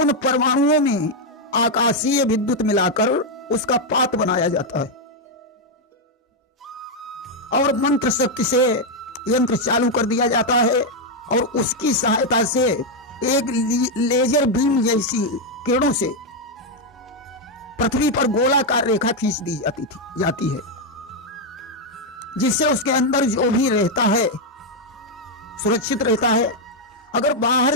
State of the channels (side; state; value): both; normal; correlation 0.02